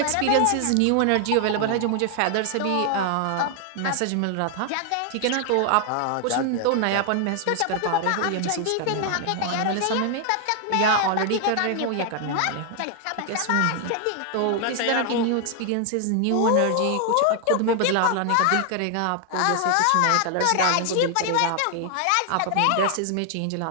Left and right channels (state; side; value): different; both; correlation 0.00